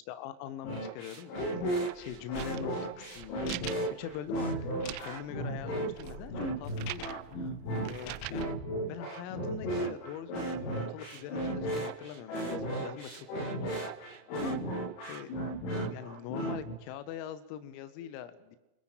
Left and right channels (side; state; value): right; late; 33 ms